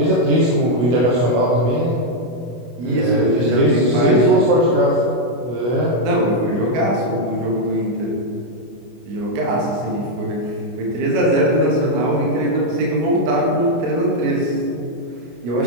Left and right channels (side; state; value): left; late; 24 ms